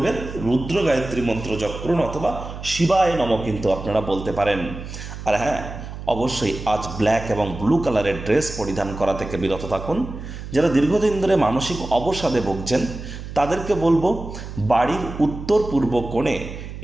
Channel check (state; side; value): noise; right; hum, 10 dB below the sound